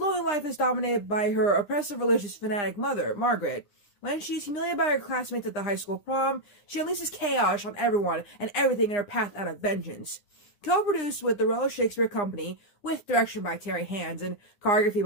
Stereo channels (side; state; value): right; late; 9.8 ms